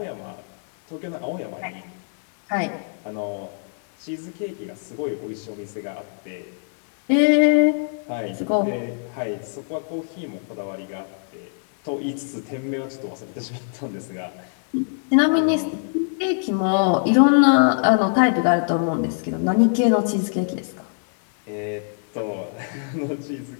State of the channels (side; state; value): right; silent; digital silence